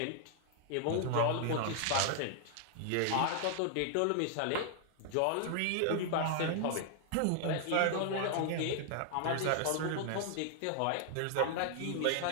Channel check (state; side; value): different; both; correlation 0.00